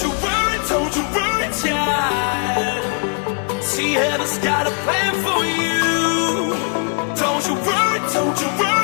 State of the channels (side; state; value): right; quieter; 37.7 dB